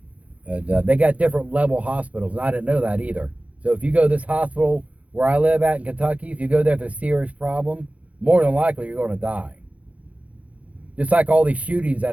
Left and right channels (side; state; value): left; late; 0.066 ms